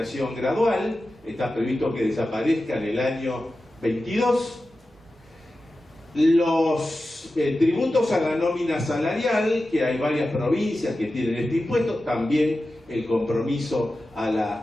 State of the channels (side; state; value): both; normal; correlation 0.93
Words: gradual, está previsto que desaparezca en el año 22. Los tributos a la nómina salarial, que hay varias provincias que tienen este impuesto, también el compromiso a